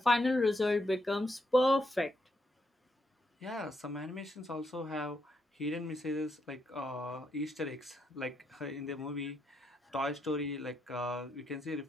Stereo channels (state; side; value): normal; both; correlation 0.79